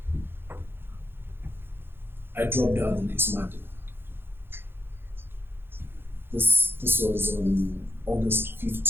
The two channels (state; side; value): late; left; 0.10 ms